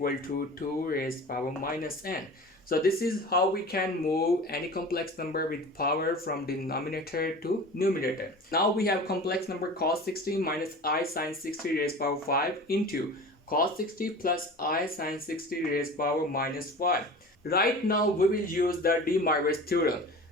to 2 raised power minus n. So this is how we can move any complex number with power from denominator to numerator. Now we have complex number cos 60 minus I sine 60 raised power 5 into cos 60 plus I sine 60 raised power minus 5. Right now we will use the Demoivre's theorem.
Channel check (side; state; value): both; normal; correlation 0.37